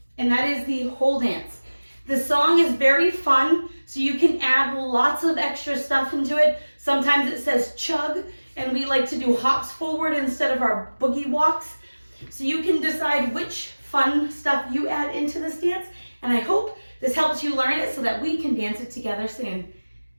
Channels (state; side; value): inverted; both; correlation -1.00